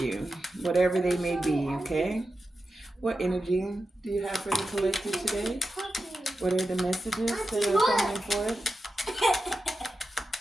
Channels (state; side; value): normal; both; correlation 0.90